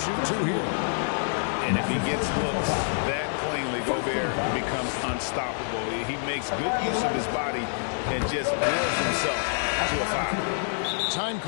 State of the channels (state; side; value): silent; right; 60 dB below the other